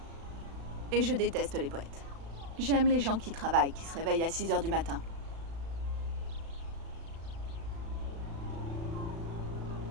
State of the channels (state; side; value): late; left; 36 ms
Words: Et je déteste les poètes. J'aime les gens qui travaillent, qui se réveillent à 6 h du matin.